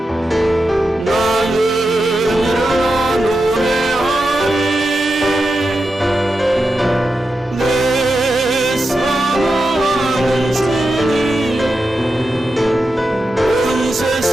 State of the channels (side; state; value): both; normal; correlation 0.89